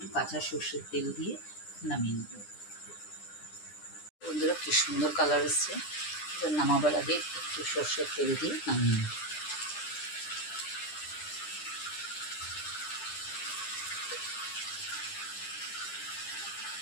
কাঁচা সর্ষের তেল দিয়ে নামিয়ে নেব। বন্ধুরা কি সুন্দর কালার এসছে। এবার নামাবার আগে একটু সর্ষের তেল দিয়ে নামিয়ে নেব।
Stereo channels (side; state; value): right; late; 9.9 ms